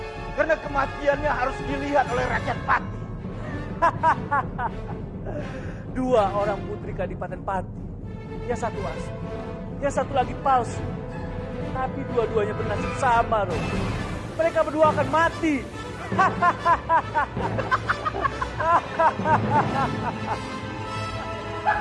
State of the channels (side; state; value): both; identical; correlation 1.00